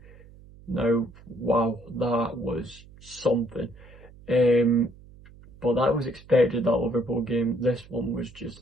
Now, wow, that was something. But that was expected, that Liverpool game. This one was just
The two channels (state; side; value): noise; right; hum, 22 dB below the sound